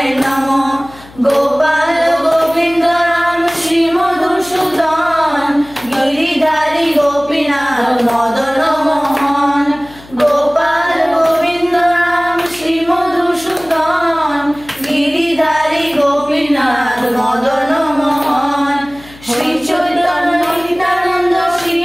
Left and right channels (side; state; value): left; noise; hum, 22 dB below the sound